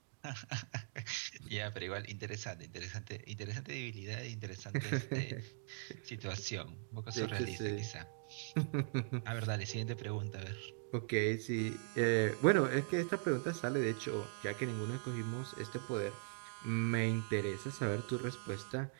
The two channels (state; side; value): silent; left; digital silence